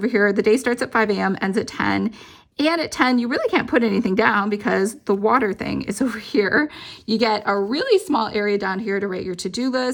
here. The day starts at 5 a.m., ends at 10. And at 10, you really can't put anything down because the water thing is over here. You get a really small area down here to write your to-do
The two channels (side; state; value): both; identical; correlation 1.00